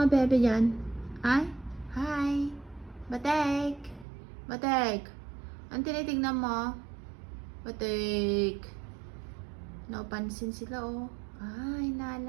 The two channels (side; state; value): left; drops out; at 4.0 s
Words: bebe yan? Ay? Hi! Batek! Batek! Ang tinitignan mo? Batek! Napansin sila oh. Ay,